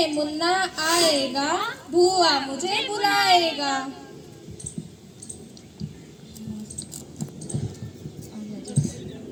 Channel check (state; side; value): identical; both; correlation 1.00